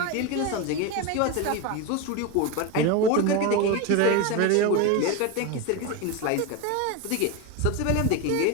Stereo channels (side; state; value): both; different; correlation 0.04